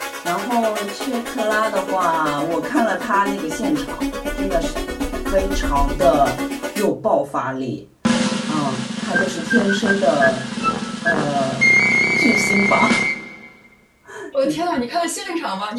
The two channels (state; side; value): identical; both; correlation 1.00